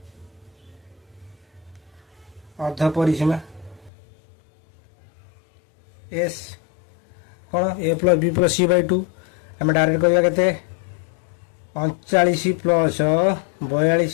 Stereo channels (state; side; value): drops out; right; at 3.9 s